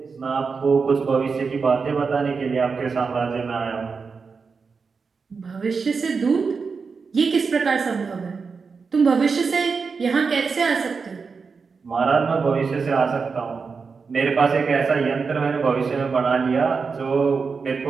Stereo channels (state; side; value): quieter; left; 5.1 dB